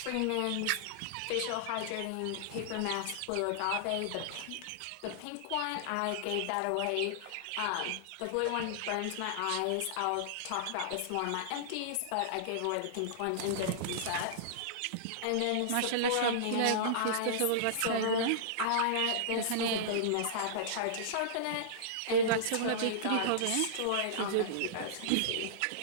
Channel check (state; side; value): different; both; correlation -0.02